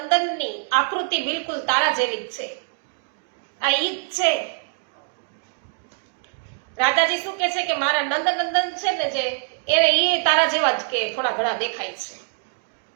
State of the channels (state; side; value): silent; left; 56 dB below the other